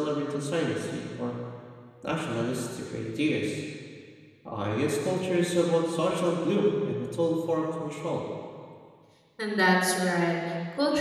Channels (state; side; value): identical; both; correlation 1.00